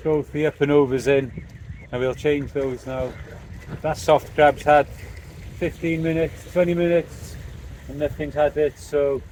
both the up and overs in and we'll change those now. That soft crab's had 15 minutes, 20 minutes and nothing's had it, so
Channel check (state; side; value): identical; both; correlation 1.00